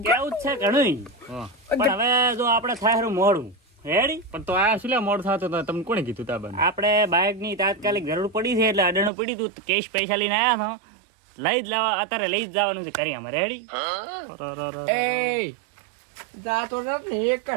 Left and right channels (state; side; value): drops out; left; at 9.1 s